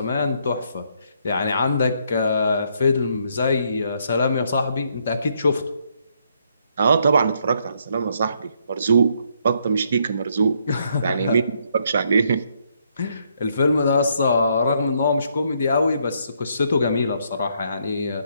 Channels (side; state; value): both; inverted; correlation -0.73